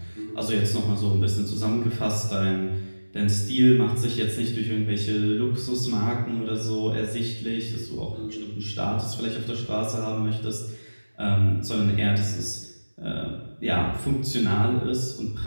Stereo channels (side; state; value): both; inverted; correlation -1.00